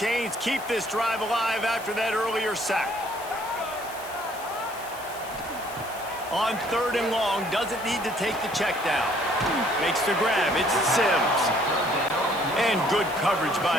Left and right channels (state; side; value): noise; left; hiss, 16 dB below the sound